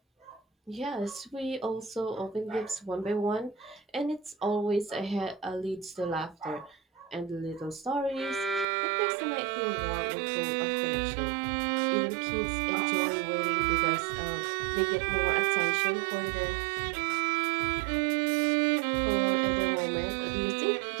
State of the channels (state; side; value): drops out; left; at 8.7 s